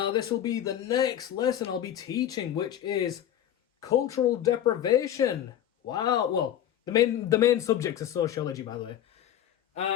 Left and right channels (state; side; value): quieter; right; 11.0 dB